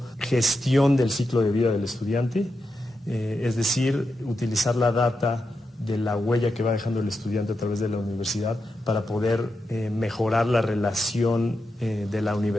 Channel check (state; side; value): normal; both; correlation 0.87